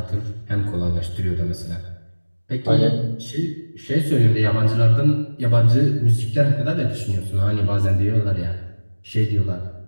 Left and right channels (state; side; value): inverted; both; correlation -1.00